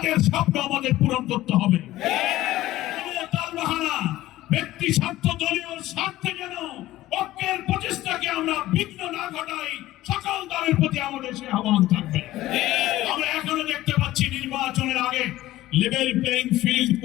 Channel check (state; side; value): quieter; right; 15.8 dB